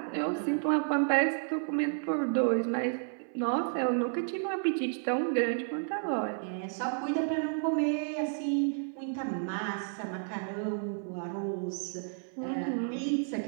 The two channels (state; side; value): silent; left; 57 dB below the other